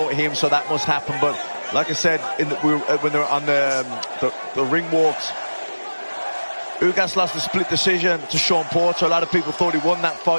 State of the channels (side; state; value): both; inverted; correlation -1.00